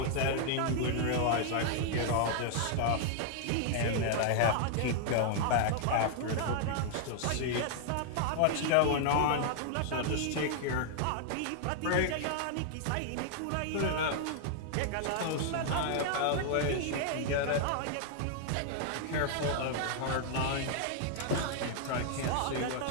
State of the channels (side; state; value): both; different; correlation -0.01